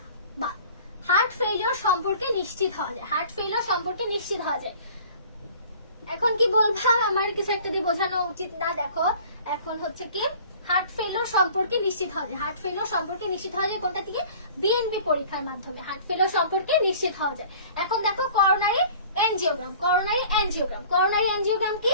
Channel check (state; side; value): inverted; both; correlation -0.48